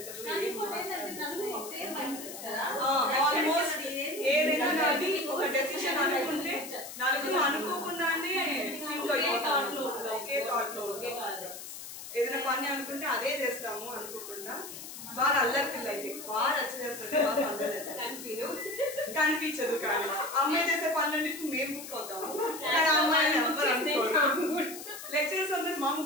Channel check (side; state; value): left; noise; hiss, 11 dB below the sound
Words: ఆల్మోస్ట్ ఏదైనా కానీ ఒక డెసిషన్ అనుకుంటే నలుగురు అనుకోకుండానే ఒకే థాట్ లో ఏదైనా పని అనుకుంటే అదే చేస్తాము అనుకోకుండా. బాగా అల్లరి పిల్ల అయితే బాగా రచ్చ చేస్తుంది, బాగా అందరూ కనిపించదు. కానీ అమ్మాయి చేసే పనులన్నిటికీ మేము బుక్ అవుతాము, కానీ అమ్మాయిని ఎవరు అనుకోరు. లెక్చరర్స్ అందరూ మా